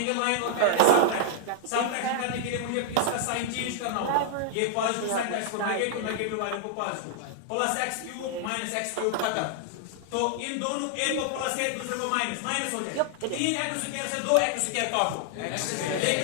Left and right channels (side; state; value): both; different; correlation -0.01